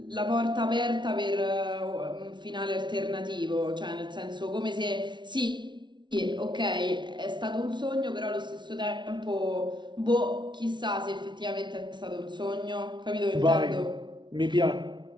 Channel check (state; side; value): late; left; 0.23 ms